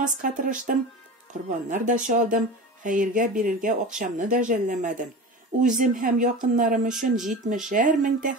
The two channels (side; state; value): both; normal; correlation 0.32